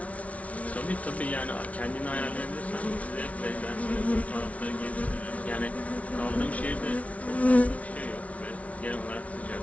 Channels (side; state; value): right; late; 0.066 ms